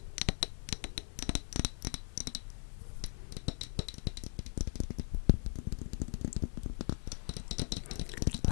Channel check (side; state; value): right; silent; 52 dB below the other